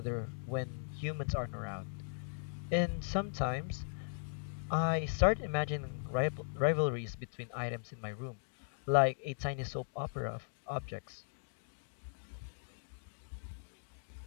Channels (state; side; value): silent; right; digital silence